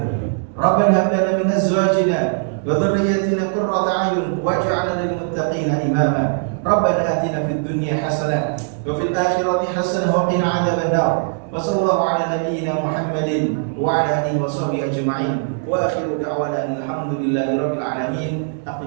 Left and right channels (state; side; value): silent; left; digital silence